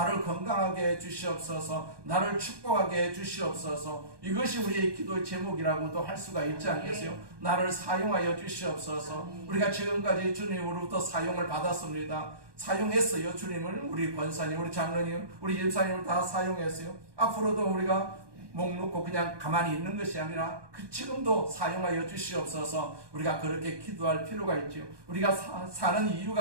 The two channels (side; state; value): left; late; 1.2 ms